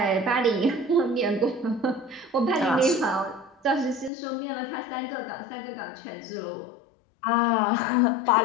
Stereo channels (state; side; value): drops out; right; at 4.1 s